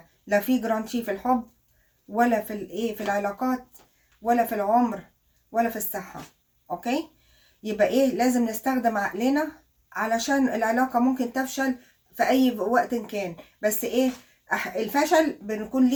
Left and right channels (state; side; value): identical; both; correlation 1.00